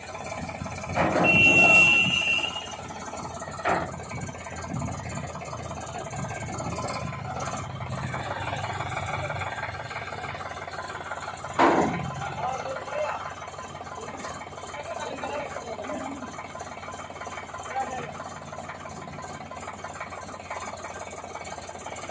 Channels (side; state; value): both; identical; correlation 1.00